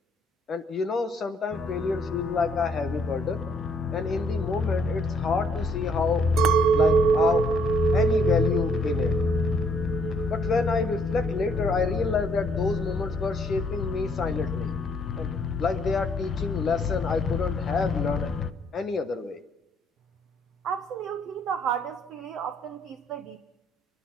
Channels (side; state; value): both; normal; correlation 0.66